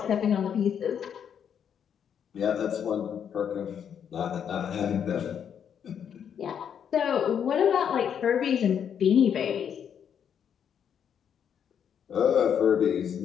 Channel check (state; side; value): quieter; right; 8.2 dB